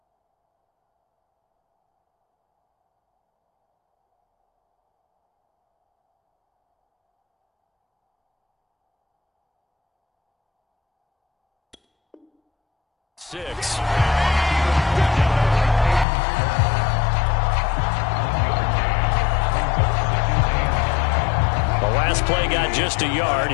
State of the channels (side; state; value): right; drops out; at 16.1 s